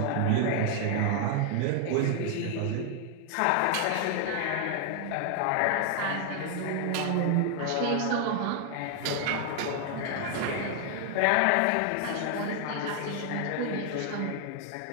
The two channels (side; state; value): both; different; correlation 0.00